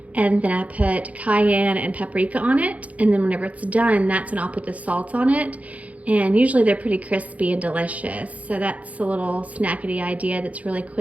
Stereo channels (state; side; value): late; left; 0.068 ms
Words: And then I put cayenne and paprika on it. And then whenever it's done, that's when I'll put the salt on it. And usually they're pretty crispy and delicious. So that's a little snackety idea that's really